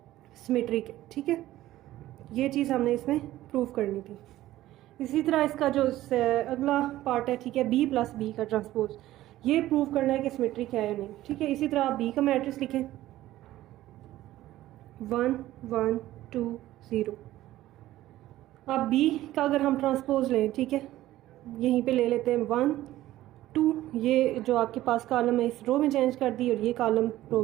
सिमेट्रिक है, ठीक है। ये चीज़ हमने इसमें प्रूव करनी थी। इसी तरह इसका जो अगला पार्ट है, ठीक है, बी प्लस बी का ट्रांसपोज, ये प्रूव करना है कि सिमेट्रिक है या नहीं, ठीक है। इसी तरह आप बी का मैट्रिक्स लिखें 1 1 2 0। अब बी का अगर हम ट्रांसपोज लें, ठीक है, यहीं पे ले लेते हैं 1 2, ये जो आपके पास कॉलम है इस रो में चेंज कर दी और ये कॉलम रो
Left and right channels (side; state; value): left; quieter; 15.0 dB